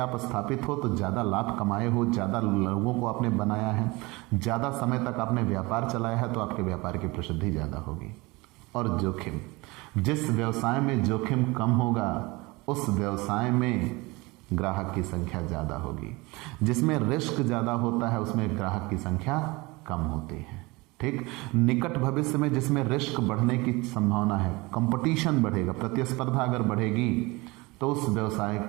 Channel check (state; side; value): quieter; left; 23.7 dB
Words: स्थापित हो तो ज़्यादा लाभ कमाए हो, ज़्यादा लोगों को आपने बनाया है, ज़्यादा समय तक आपने व्यापार चलाया है, तो आपके व्यापार की प्रसिद्धि ज़्यादा होगी। और जोखिम, जिस व्यवसाय में जोखिम कम होगा उस व्यवसाय में ग्राहक की संख्या ज़्यादा होगी। जिसमें रिस्क ज़्यादा होता है उसमें ग्राहक की संख्या कम होती है। ठीक, निकट भविष्य में जिसमें रिस्क बढ़ने की संभावना है, कंपटीशन बढ़ेगा, प्रतिस्पर्धा अगर बढ़ेगी तो उस व्यवसाय